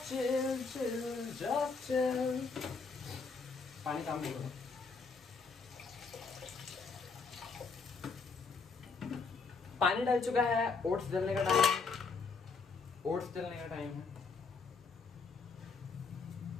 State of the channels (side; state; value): right; quieter; 4.7 dB